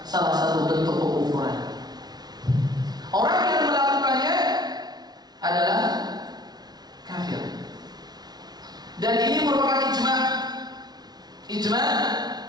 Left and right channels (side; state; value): left; late; 0.19 ms